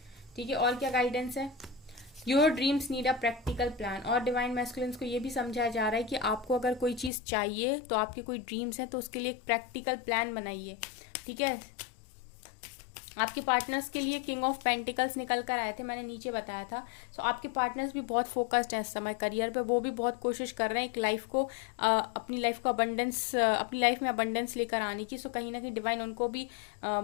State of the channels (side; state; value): right; drops out; at 7.1 s